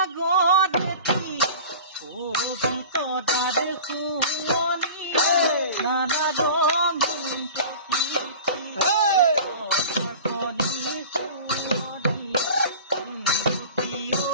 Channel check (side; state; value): both; inverted; correlation -0.39